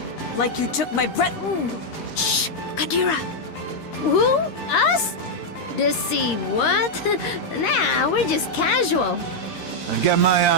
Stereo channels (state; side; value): late; right; 13 ms